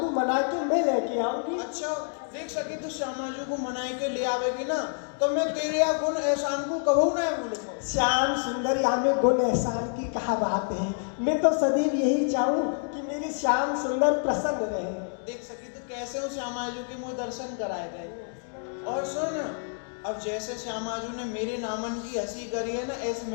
मना के मैं लेके आऊंगी। अच्छा देख सकी तो श्यामाजू को मनाई के ले आवेगी ना, तो मैं तेरे या गुण एहसान को कबू ना भूलूंगा। श्याम सुंदर, यहाँ में गुण एहसान की कहा बात है। मैं तो सदैव यही चाहूँ कि मेरे श्याम सुंदर प्रसन्न रहे। देख सकी तो कैसे हो श्यामाजू के मुझे दर्शन कराए गए। और सुन, अब जैसे श्यामाजू ने मेरे नामन की हंसी करी है ना, ऐसे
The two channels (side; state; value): right; silent; 59 dB below the other